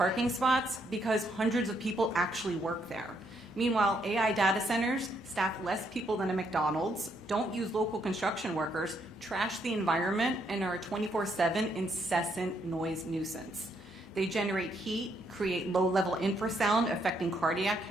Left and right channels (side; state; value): both; normal; correlation 0.74